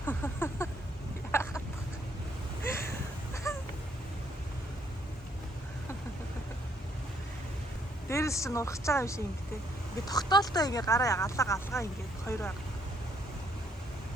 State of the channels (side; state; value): both; normal; correlation 0.69